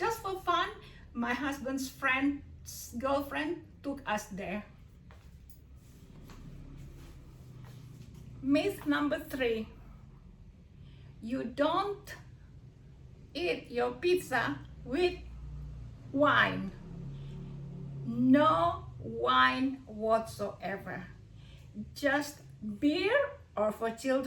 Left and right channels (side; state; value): both; identical; correlation 1.00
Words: for fun. My husband's friend's girlfriend took us there. Myth number 3. You don't eat your pizza with wine. No wine whatsoever. Just beer, or for